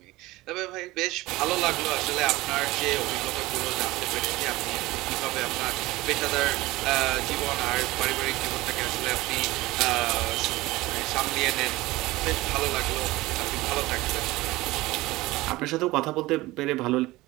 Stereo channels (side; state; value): left; quieter; 19.3 dB